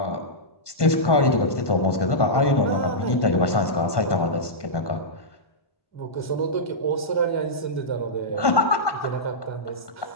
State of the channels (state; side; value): late; right; 1.2 ms